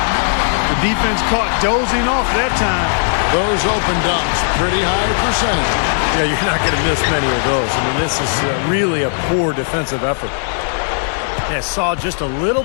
The defense caught dozing off that time. Those open dunks, pretty high percentage. Yeah, you're not going to miss many of those. I mean, this is really a poor defensive effort. Yeah, saw just a little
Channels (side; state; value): right; silent; digital silence